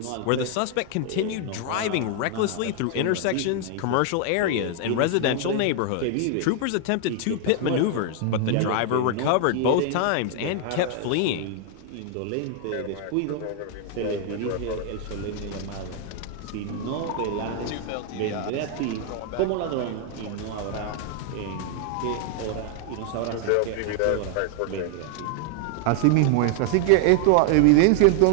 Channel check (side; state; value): both; different; correlation 0.00